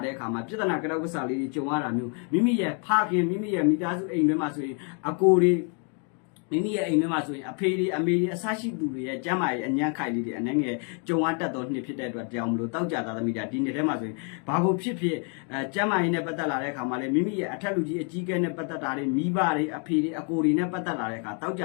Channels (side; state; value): right; quieter; 39.9 dB